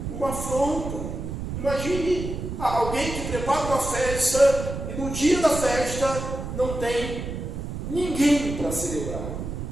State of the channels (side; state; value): right; noise; rumble, 6 dB below the sound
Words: uma afronta. Imagine alguém que prepara uma festa e no dia da festa não tem ninguém para celebrar.